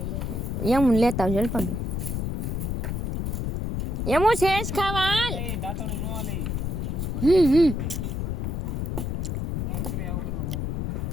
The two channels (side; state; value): left; noise; rumble, 2 dB below the sound